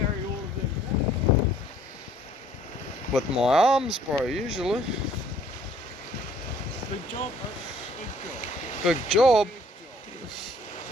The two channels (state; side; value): normal; both; correlation 0.59